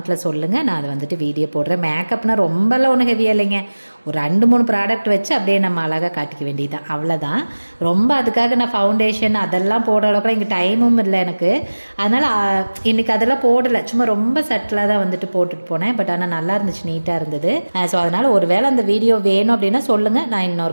சொல்லுங்கள். நான் அதை வந்துட்டு வீடியோ போடுறேன். மேக்கப்னால் ரொம்பலாம் ஒன்றும் ஹெவியாக இல்லைங்க. ஒரு 2-3 ப்ராடக்ட் வச்சு அப்படியே நம்ம அழகாக காட்டிக்க வேண்டியதுதான், அவ்வளோதான். ரொம்ப அதுக்காக நான் ஃபவுண்டேஷன் அதெல்லாம் போடுற அளவுக்குலாம் இங்கே டைமும் இல்லை எனக்கு. அதனால் இன்றைக்கி அதெல்லாம் போடலை, சும்மா ரொம்ப சட்டிலாக தான் வந்துட்டு போட்டுட்டு போனேன். பட் ஆனால் நல்லா இருந்துச்சு, நீட்டாக இருந்தது. ஸோ அதனால் ஒரு வேளை அந்த வீடியோ வேணும் அப்படின்னா சொல்லுங்கள், நான்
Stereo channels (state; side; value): inverted; both; correlation -1.00